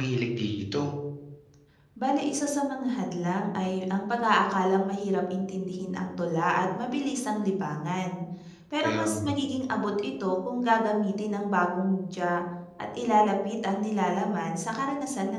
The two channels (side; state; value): both; identical; correlation 1.00